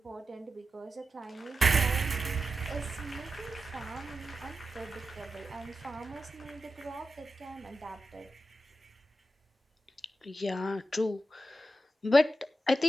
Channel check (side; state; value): both; normal; correlation 0.90